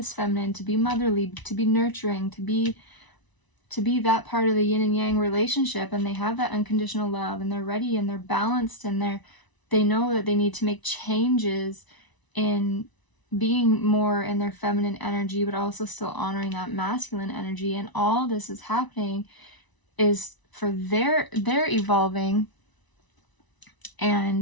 feminine, to be motherly, to be nurturing, to be that part of the yin and yang relationship. And they have that unconditional love, and they're ready, and they're balanced, and they know that they need to make changes in being more in their feminine energy, but also still honoring that masculine energy. And all this is happening is for their evolving,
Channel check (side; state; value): right; late; 1.0 ms